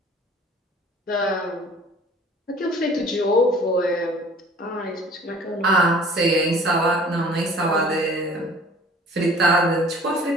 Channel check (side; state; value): both; normal; correlation 0.49